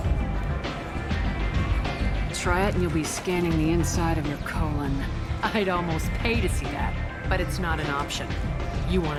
Try it and you'll be scanning the inside of your colon. I'd almost pay to see that, but it's not an option. You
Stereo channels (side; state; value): both; identical; correlation 1.00